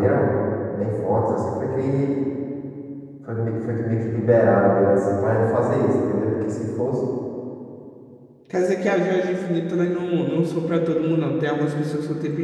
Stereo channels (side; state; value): both; identical; correlation 1.00